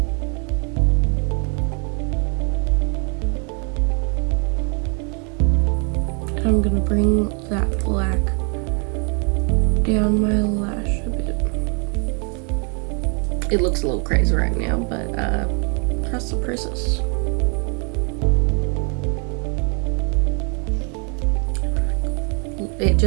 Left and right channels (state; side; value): quieter; left; 37.5 dB